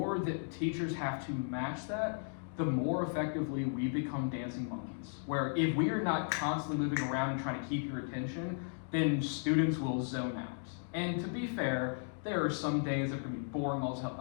that teachers have to match that, the more effectively we become dancing monkeys. Where if we are not constantly moving around and trying to keep your attention, then students will zone out. And to be fair, there are some days that are going to be boring as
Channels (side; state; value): right; silent; digital silence